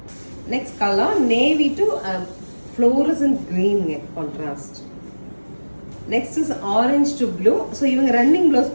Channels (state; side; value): inverted; both; correlation -1.00